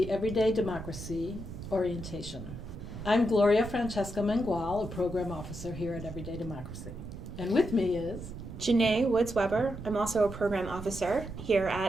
Everyday Democracy Orientation. I'm Gloria Francesca Mengual, a program officer here at Everyday Democracy. And with me is Janae Woods-Weber. I'm also a program officer here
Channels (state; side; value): noise; right; rumble, 10 dB below the sound